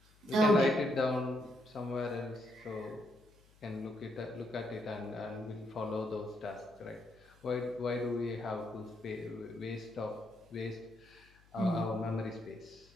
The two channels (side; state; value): left; noise; hum, 28 dB below the sound